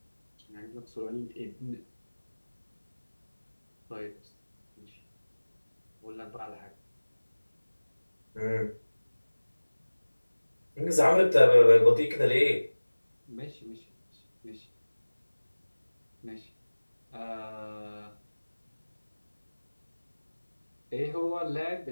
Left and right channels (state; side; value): inverted; both; correlation -1.00